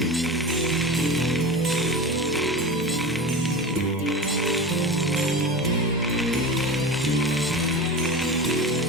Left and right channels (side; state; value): both; normal; correlation 0.28